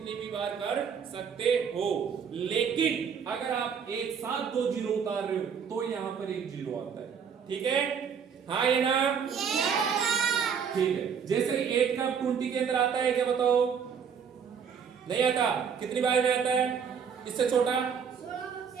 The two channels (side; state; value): left; quieter; 7.0 dB